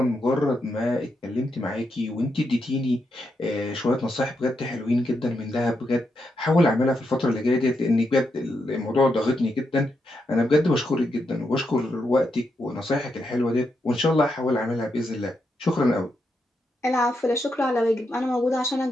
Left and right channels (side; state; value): both; normal; correlation 0.82